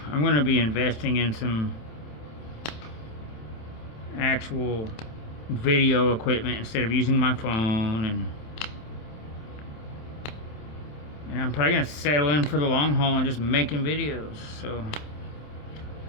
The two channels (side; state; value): right; late; 27 ms